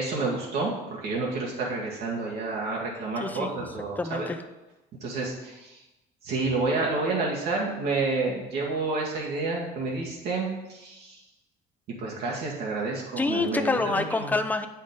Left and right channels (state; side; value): normal; both; correlation 0.42